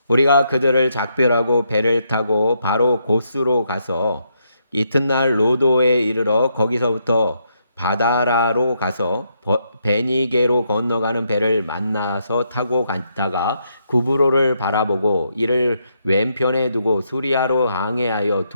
우리가 그들을 작별하고 배를 타고 바로 고스로 가서 이튿날 로도에 이르러 거기서부터 바다라로 가서 베니게로 건너가는 배를 만나서 타고 갔다가 구브로를 바라보고 이를 왼편에 두고 수리아로 항해하여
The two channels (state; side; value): inverted; both; correlation -0.78